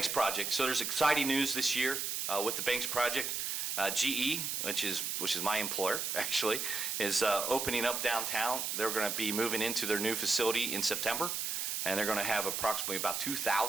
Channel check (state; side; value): noise; right; hiss, 1 dB below the sound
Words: Project. So there's exciting news this year with the Banks Project. GE, which is my employer, actually, is opening up downtown. They're going to be moving into their new facility in September, and they're going to have approximately about